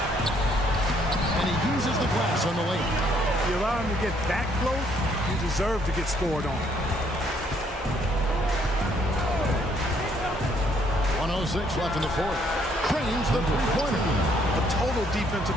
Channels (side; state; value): both; normal; correlation 0.67